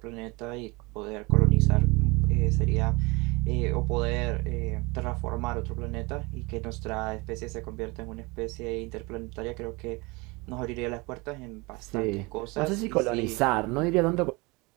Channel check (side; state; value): left; quieter; 25.9 dB